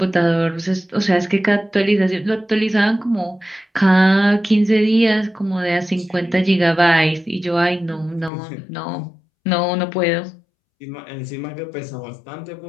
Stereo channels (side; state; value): right; drops out; at 8.3 s